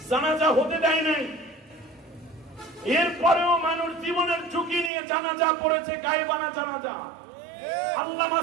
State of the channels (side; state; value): left; drops out; at 4.9 s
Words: জানাজা হতে দেয় নাই, এরপরেও মানুষ জীবনের ঝুঁকি নিয়ে জানাজা পড়েছে, গায়েবানা জানাজা। আল্লামা